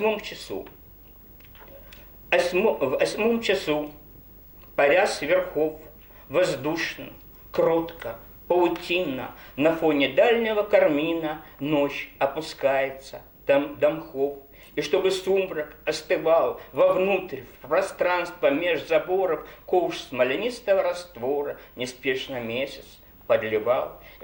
часу. В 8 часу, паря с верхов, воздушно, кротко, паутинно, на фоне дальнего кармина ночь опускается до мхов. И чтобы сумрак остывал вовнутрь, в пространство меж заборов, ковш смоленистого раствора неспешно месяц подливал.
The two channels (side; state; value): both; identical; correlation 1.00